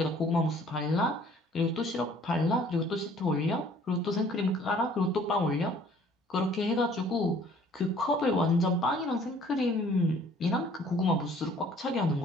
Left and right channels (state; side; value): normal; both; correlation 0.56